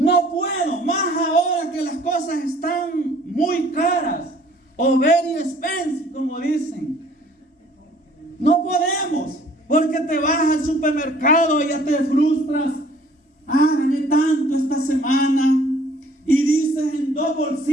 puedo, más ahora que las cosas están muy caras, o very expensive, como dicen. No podemos, porque te vas al supermercado y ya te frustras. Gané tanto esta semana, y dices en 2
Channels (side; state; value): both; normal; correlation 0.56